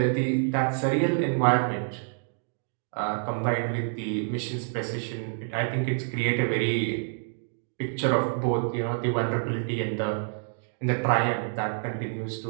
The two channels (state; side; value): silent; left; digital silence